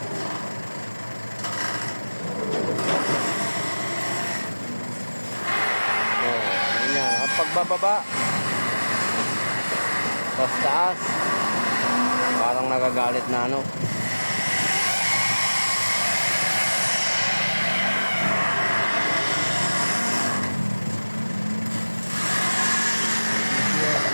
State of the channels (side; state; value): both; inverted; correlation -1.00